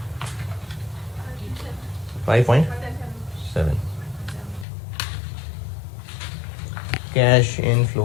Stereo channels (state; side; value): drops out; right; at 4.7 s